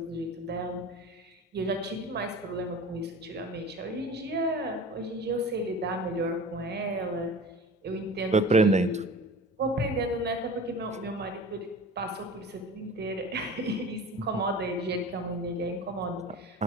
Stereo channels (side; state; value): both; normal; correlation 0.38